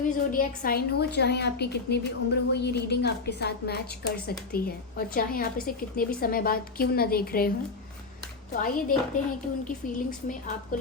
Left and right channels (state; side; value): quieter; right; 4.1 dB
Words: भी ज़ोडिएक साइन हो, चाहे आपकी कितनी भी उम्र हो, ये रीडिंग आपके साथ मैच कर सकती है, और चाहे आप इसे कितने भी समय बाद क्यों ना देख रहे हों। तो आइए देखते हैं कि उनकी फीलिंग्स में आपको